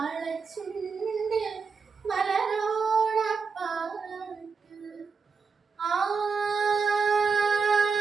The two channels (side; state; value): left; quieter; 5.2 dB